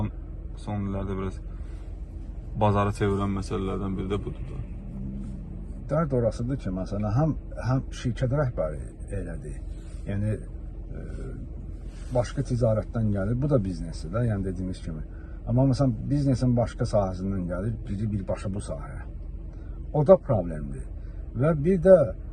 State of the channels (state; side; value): identical; both; correlation 1.00